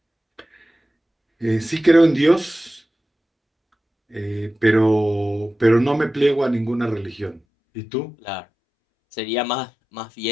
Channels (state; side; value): drops out; right; at 7.4 s